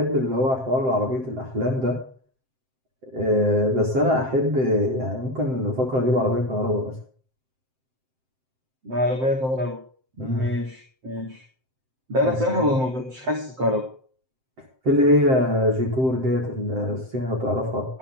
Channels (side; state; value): left; late; 7.7 ms